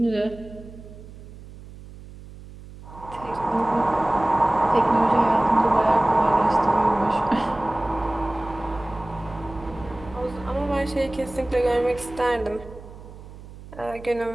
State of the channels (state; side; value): noise; right; hum, 17 dB below the sound